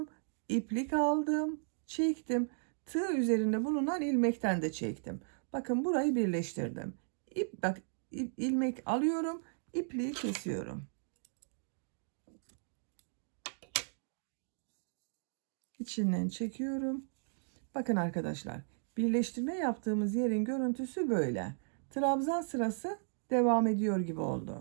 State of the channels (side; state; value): left; silent; digital silence